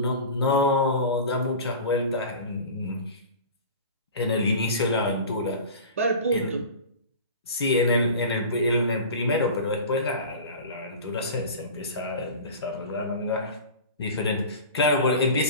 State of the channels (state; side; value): inverted; both; correlation -0.35